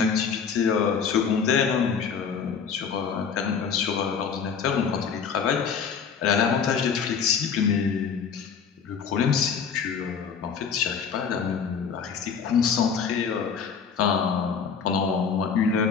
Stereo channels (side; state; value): right; quieter; 6.4 dB